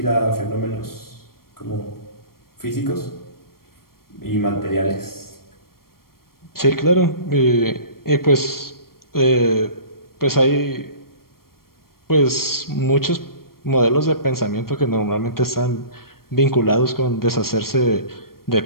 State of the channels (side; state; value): right; late; 0.93 ms